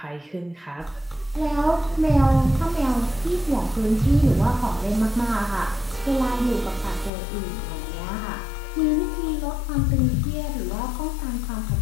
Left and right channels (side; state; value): right; drops out; at 7.1 s